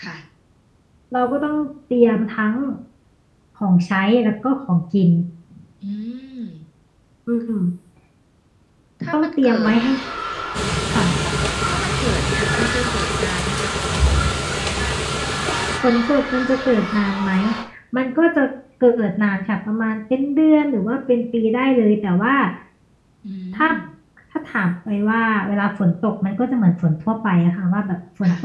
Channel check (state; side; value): identical; both; correlation 1.00